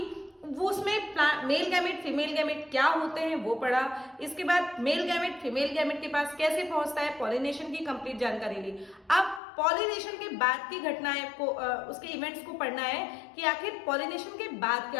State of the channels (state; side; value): drops out; right; at 9.4 s